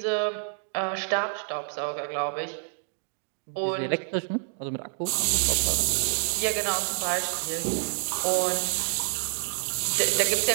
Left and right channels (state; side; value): silent; left; digital silence